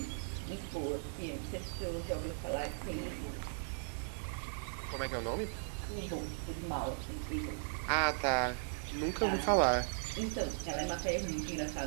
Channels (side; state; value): left; silent; digital silence